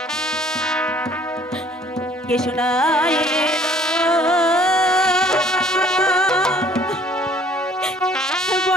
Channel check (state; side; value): normal; both; correlation 0.56